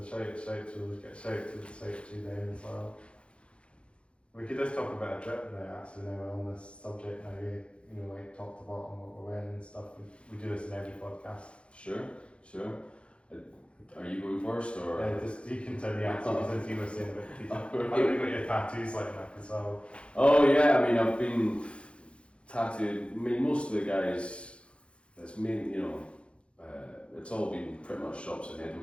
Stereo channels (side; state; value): right; late; 0.059 ms